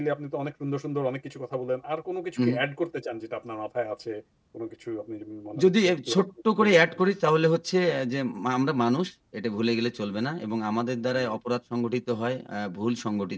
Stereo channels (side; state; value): both; identical; correlation 1.00